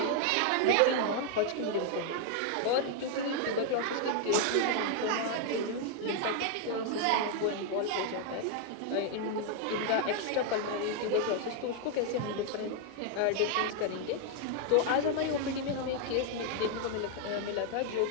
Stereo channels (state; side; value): different; both; correlation 0.00